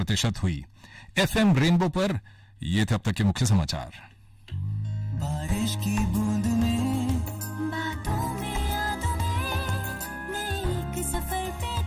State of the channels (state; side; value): identical; both; correlation 1.00